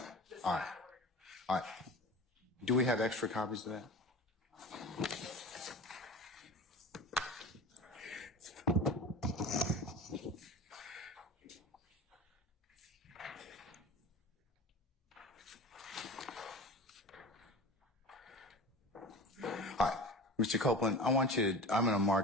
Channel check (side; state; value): both; normal; correlation 0.34